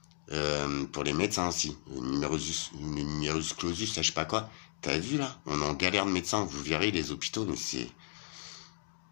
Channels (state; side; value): silent; right; digital silence